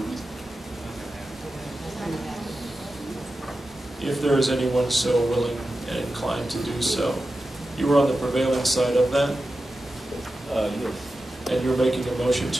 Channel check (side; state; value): both; normal; correlation 0.92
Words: If there is anyone so willing and inclined to do so. You were on the prevailing side of that, Yes. and you're making a motion